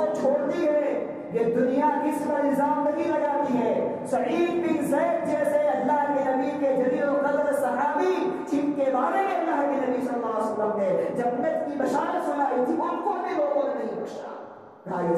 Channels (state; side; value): identical; both; correlation 1.00